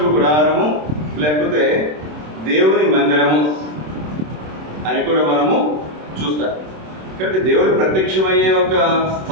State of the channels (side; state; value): left; late; 26 ms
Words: గుడారము లేకపోతే దేవుని మందిరము అని కూడా మనము చూస్తాం. కాబట్టి దేవుడు ప్రత్యక్షమయ్యే ఒక